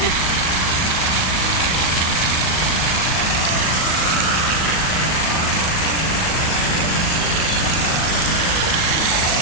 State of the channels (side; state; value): right; late; 38 ms